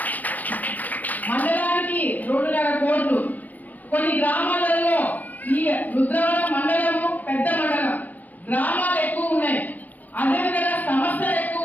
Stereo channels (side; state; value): right; late; 0.081 ms